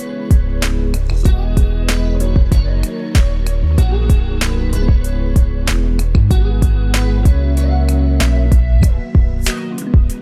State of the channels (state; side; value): identical; both; correlation 1.00